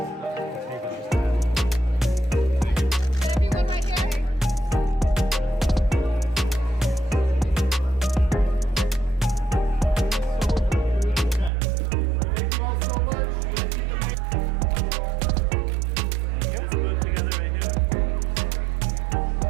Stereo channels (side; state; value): left; drops out; at 11.5 s